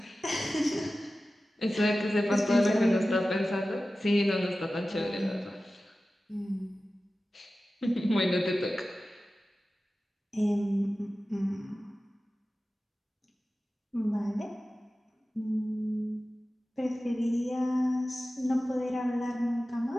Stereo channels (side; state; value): both; normal; correlation 0.95